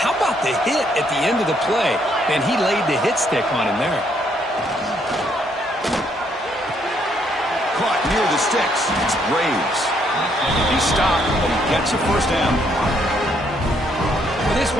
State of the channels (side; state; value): both; normal; correlation 0.71